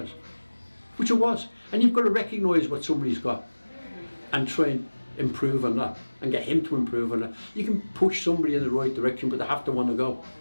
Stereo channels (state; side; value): inverted; both; correlation -1.00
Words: which it was. And you've got to recognise what somebody's got and try and improve on that and get him to improve on that. You can push somebody in the right direction, but they have to want to go.